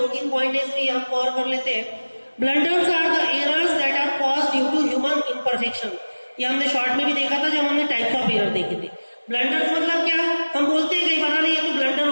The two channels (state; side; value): inverted; both; correlation -1.00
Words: तीन पॉइंट इसमें हम कवर कर लेते हैं. Blunders are the errors that are caused due to human imperfection. ये हमने शॉर्ट में भी देखा था जब हमने टाइप्स ऑफ एरर देखे थे. ब्लंडर्स मतलब क्या? हम बोलते हैं कई बार अरे ये तो ब्लंडर